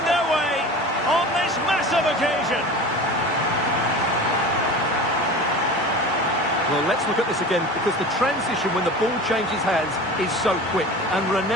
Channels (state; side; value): normal; both; correlation 0.35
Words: their way on this massive of occasion. Well, let's look at this again, because the transition when the ball changes hands is so quick. And